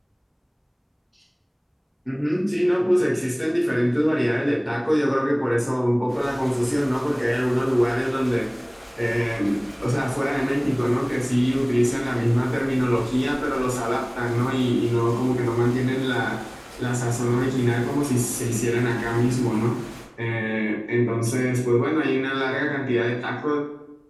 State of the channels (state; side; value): identical; both; correlation 1.00